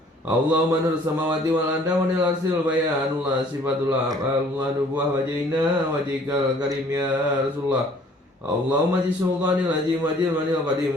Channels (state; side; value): normal; both; correlation 0.56